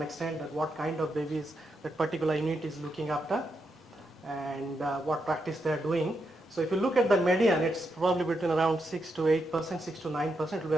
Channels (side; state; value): both; normal; correlation 0.83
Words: extent, that what kind of babies that particular unit is looking after and what practice they are doing. So if you look at the median, it's probably between around 6 to 8%, 6 to 9%, it will be